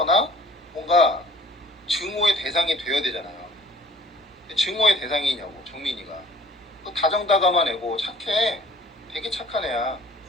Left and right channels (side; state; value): both; normal; correlation 0.50